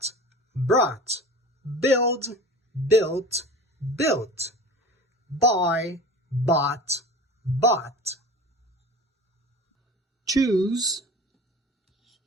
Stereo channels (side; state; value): both; normal; correlation 0.37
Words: brought. Build, built, built. Buy, bought, bought. Choose,